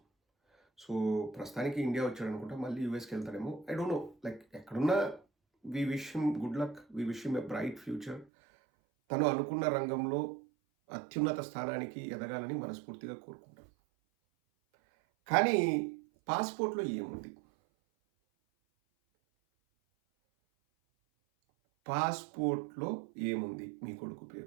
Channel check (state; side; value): drops out; left; at 8.2 s